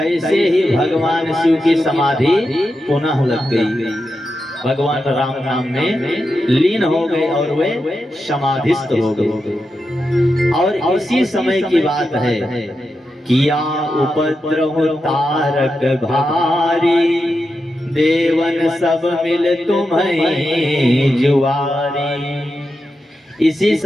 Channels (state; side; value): normal; both; correlation 0.88